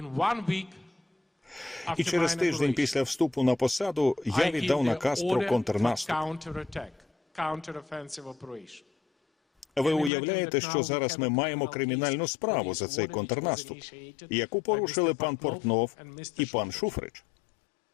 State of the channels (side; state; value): right; drops out; at 10.1 s